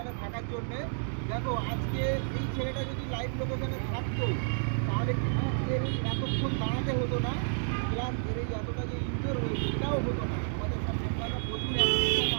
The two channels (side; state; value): left; silent; digital silence